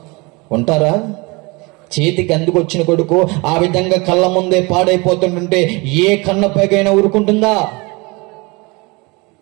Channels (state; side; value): quieter; left; 26.4 dB